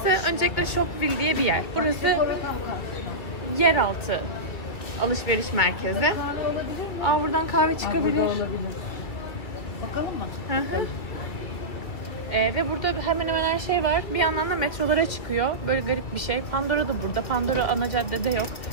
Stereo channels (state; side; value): late; right; 2.6 ms